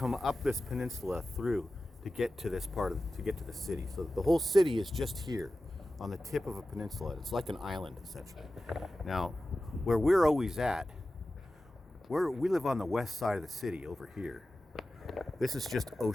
up this peninsula through to get to this to get to the city. So the whole city is just here on the tip of a peninsula. It's like an island, essentially. Now, where we're always at, we live on the west side of the city over here. This is just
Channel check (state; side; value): normal; both; correlation 0.94